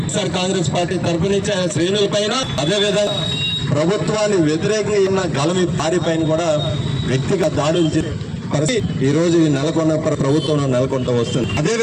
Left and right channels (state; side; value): identical; both; correlation 1.00